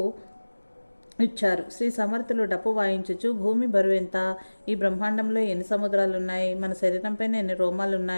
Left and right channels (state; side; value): inverted; both; correlation -1.00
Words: ఇచ్చారు. శ్రీ సమర్థులు డప్పు వాయించుచు, భూమి బరువెంత, ఈ బ్రహ్మాండంలో ఎన్ని సముద్రాలున్నాయి, మన శరీరంపైన ఎన్ని